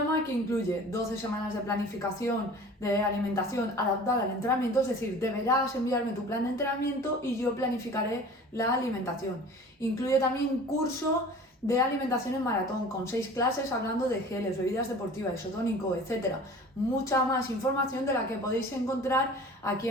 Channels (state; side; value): normal; both; correlation 0.43